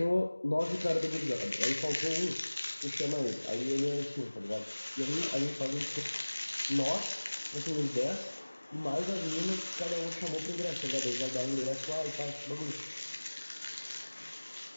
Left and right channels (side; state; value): both; inverted; correlation -1.00